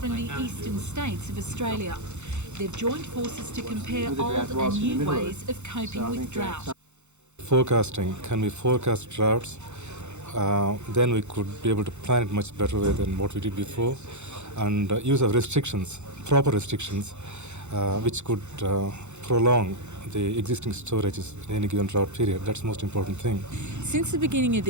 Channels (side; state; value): left; late; 0.83 ms